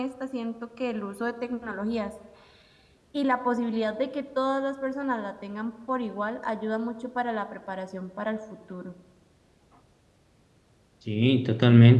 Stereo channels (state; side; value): identical; both; correlation 1.00